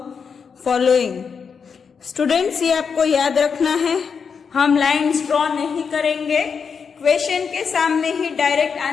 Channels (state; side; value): quieter; right; 6.1 dB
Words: following. Students ये आपको याद रखना है, हम lines draw नहीं करेंगे, question के सामने ही डायरेक्ट